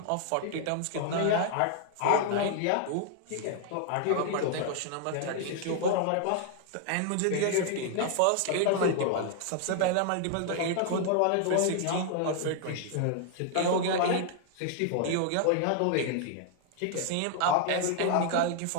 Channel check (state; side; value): different; both; correlation 0.00